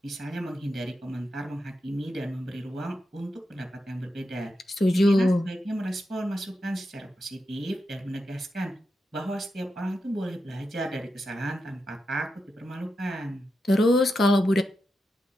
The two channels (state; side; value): normal; both; correlation 0.87